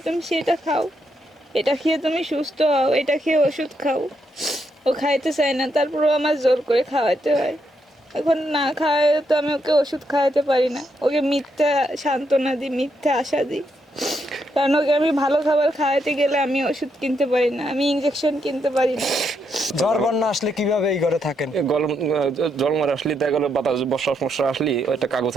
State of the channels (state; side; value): normal; both; correlation 0.79